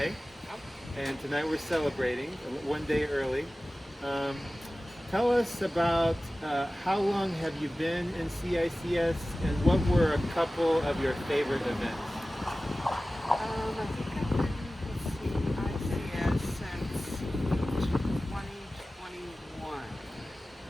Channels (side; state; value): both; normal; correlation 0.96